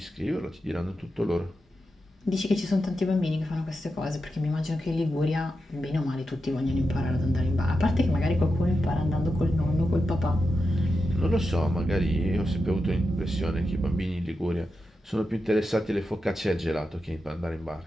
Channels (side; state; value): both; normal; correlation 0.89